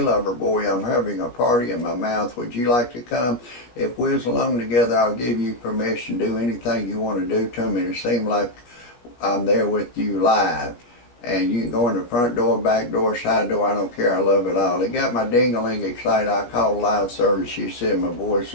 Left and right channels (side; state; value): right; late; 17 ms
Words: lover boy, I'm having a party in my mouth. Would you like to come? If we're alone together, I'll give you permission to do anything you want to do to me to seem like I'm there with you live. And you can go in the front door, back door, side door. I don't care. I love it all. It got my ding-a-ling excited. I called live service. She said my voice